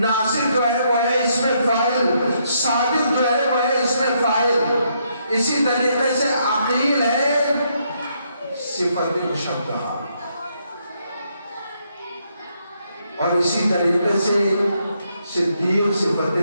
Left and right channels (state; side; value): inverted; both; correlation -0.75